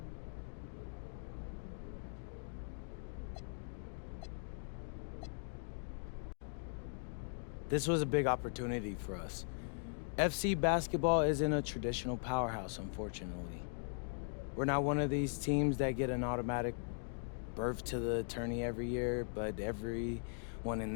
This was a big opportunity for us. FC basketball isn't a traditional powerhouse, unfortunately. We're not one of these teams that get an automatic berth to the tourney every year, but everyone in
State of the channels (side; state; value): right; silent; digital silence